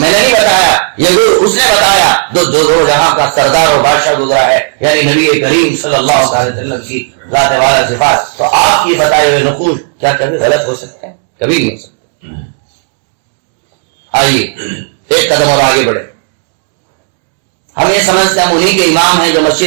نے نہیں بتایا، یہ گر اس نے بتایا دو جہاں کا سردار اور بادشاہ گزرا ہے، یعنی نبی کریم صلی اللہ علیہ وسلم کی ذات والا صفات۔ تو آپ کی بتائے ہوئے نقوش کیا کبھی غلط ہو سکتے ہیں؟ کبھی نہیں ہو سکتے۔ آئیے ایک قدم اور آگے بڑھے۔ ہم یہ سمجھتے ہیں ہم انہی کے امام ہیں جو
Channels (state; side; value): silent; left; 70 dB below the other